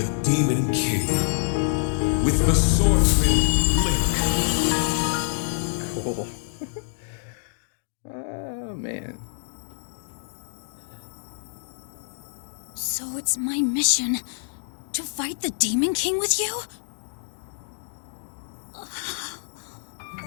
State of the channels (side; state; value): right; silent; digital silence